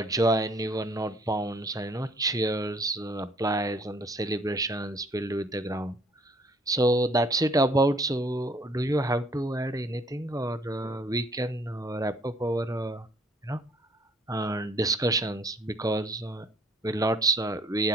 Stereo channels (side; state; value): both; normal; correlation 0.59